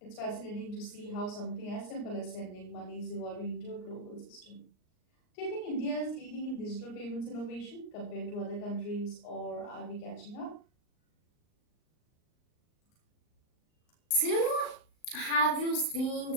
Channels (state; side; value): late; right; 38 ms